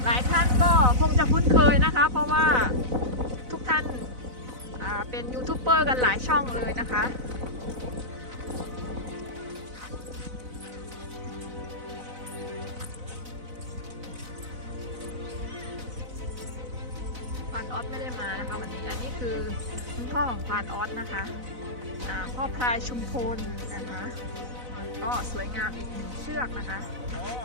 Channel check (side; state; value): left; late; 4.0 ms